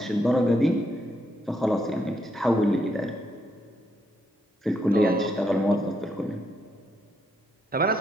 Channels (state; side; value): normal; both; correlation 0.77